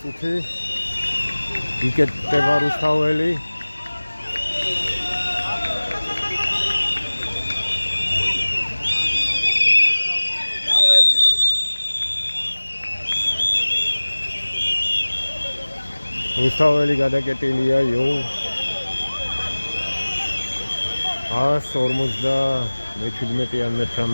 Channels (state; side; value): inverted; both; correlation -1.00